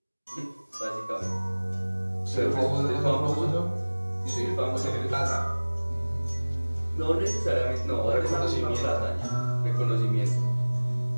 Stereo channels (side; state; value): both; inverted; correlation -1.00